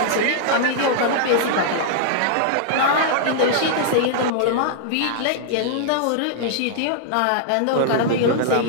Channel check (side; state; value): both; different; correlation -0.01